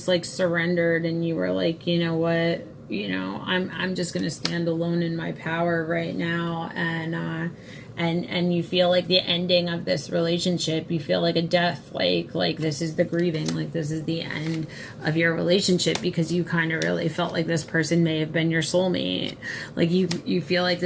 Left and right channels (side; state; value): both; identical; correlation 1.00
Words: like surrendered and you were like, you know what, you know, I'm just going to stand alone in my power right now. And you feel like the ending of this relationship, you feel like a death, like this is the grieving, like this is the end of your relationship, because you kind of really felt like this person may have been your soulmate. Like you feel like